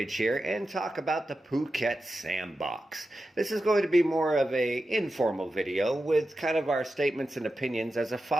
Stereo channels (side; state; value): both; normal; correlation 0.91